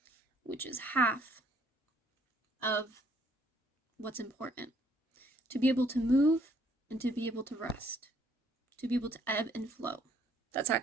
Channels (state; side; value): normal; both; correlation 0.64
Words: which is half of what's important. To be able to move and to be able to rest, to be able to ebb and flow. That's